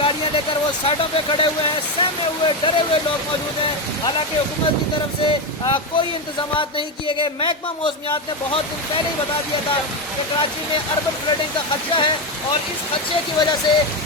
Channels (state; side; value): normal; both; correlation 0.11